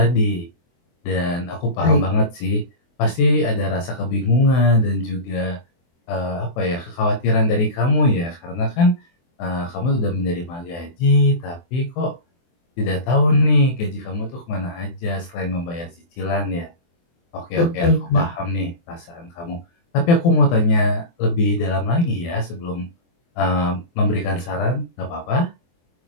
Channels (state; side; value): late; right; 23 ms